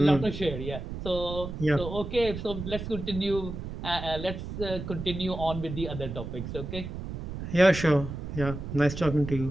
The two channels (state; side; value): noise; right; rumble, 7 dB below the sound